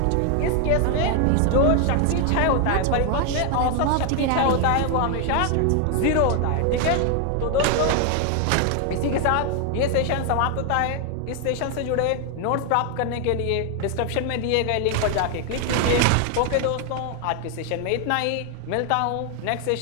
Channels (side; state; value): both; different; correlation 0.00